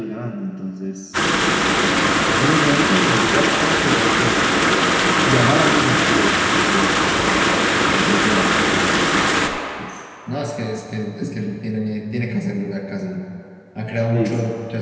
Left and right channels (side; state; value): both; identical; correlation 1.00